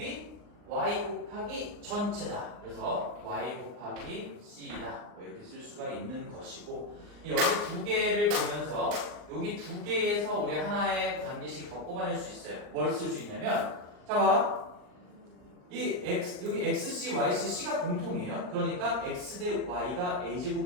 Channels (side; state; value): left; late; 39 ms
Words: y 곱하기 전체다. 그래서 y 곱하기 c다. 뭐 이렇게 쓸 수가 있는 것이고, 여기 두 개를 보면서 여기 두 개에서 우리 하나의 관계식 더 뽑아낼 수 있어요. 뭘 쓸 수 있냐면, 자 봐. 이 x 여기 xc, yc, c가 공통이에요. 그러니까 x 대 y가